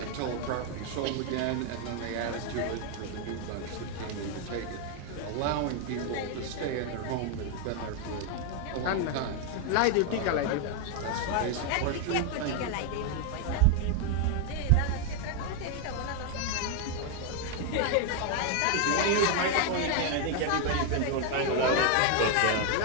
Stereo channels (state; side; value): different; both; correlation 0.01